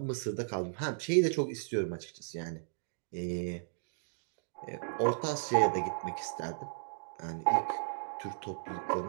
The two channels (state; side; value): silent; left; digital silence